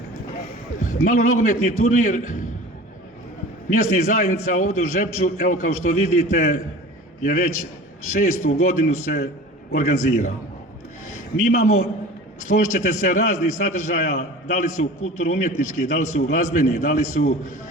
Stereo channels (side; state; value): both; normal; correlation 0.39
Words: Malo nogometni turnir mjesnih zajednica ovdje u Žepču, evo kao što vidite, je već 6. godinu se organizira. Mi imamo, složit ćete se, raznih sadržaja, da li su kulturno-umjetnički, da li su glazbeni, da li su